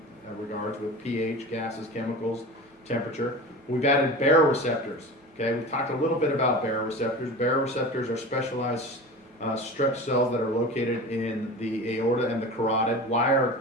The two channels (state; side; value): normal; both; correlation 0.32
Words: regards with pH, gases, chemicals, temperature. We've added baroreceptors, okay? We've talked a little bit about baroreceptors. Baroreceptors are specialized stretch cells that are located in the aorta and the carotid. Why are